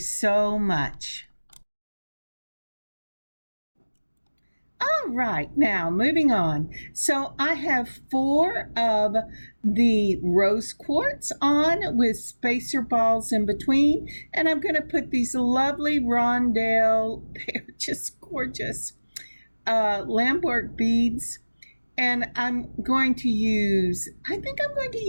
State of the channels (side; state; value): both; inverted; correlation -1.00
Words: much. All right, now moving on. So I have 4 of the rose quartz on with spacer balls in between, and I'm going to put these lovely rondelle, they're just gorgeous, Lampwork beads. And I'm going to use, I think I'm going to